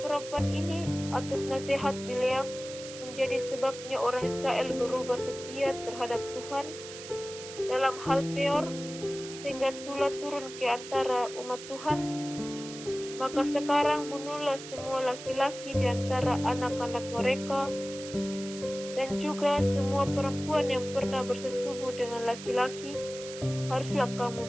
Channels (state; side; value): noise; right; hiss, 12 dB below the sound